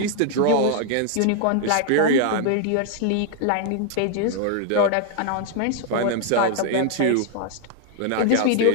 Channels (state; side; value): different; both; correlation 0.00